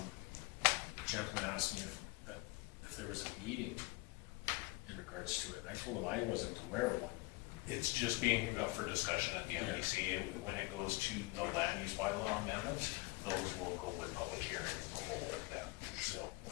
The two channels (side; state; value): right; quieter; 23.7 dB